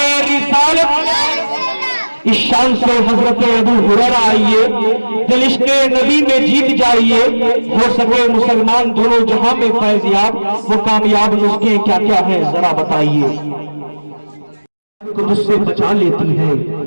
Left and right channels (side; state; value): both; inverted; correlation -1.00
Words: रिसालत। इस शान से हजरत अबू हुरैरा आइए, दिल इश्क़े नबी में जीत जाइए, हो सके मुसलमान दोनों जहां में फैज़याब। वो कामयाब नुस्खे क्या क्या है जरा बताइए। को मुझसे बचा लेती है,